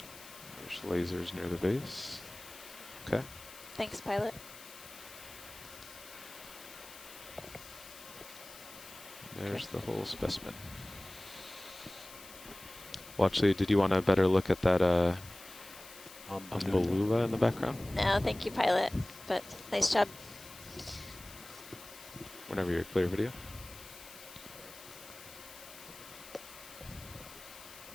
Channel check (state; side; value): noise; left; hiss, 17 dB below the sound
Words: lasers near the base. Okay. Thanks, pilot. There's the whole specimen. Well, did you want a better look at that umbellula in the background? No, thank you, pilot. But nice job. Whenever you're clear, video.